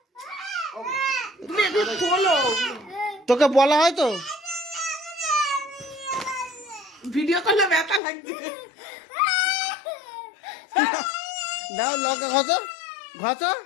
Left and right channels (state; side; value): drops out; right; at 8.0 s